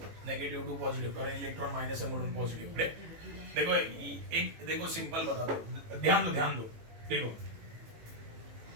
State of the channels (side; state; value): left; late; 18 ms